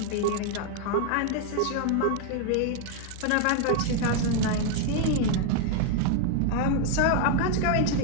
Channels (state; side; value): different; both; correlation 0.00